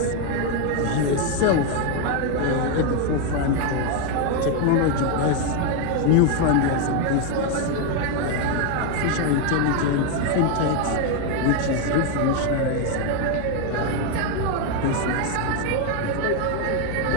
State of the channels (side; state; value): both; different; correlation 0.01